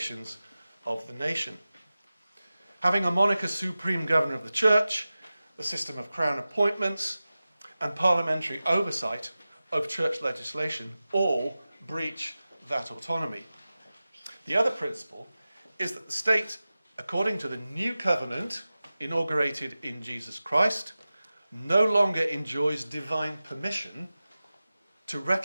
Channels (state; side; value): inverted; both; correlation -0.96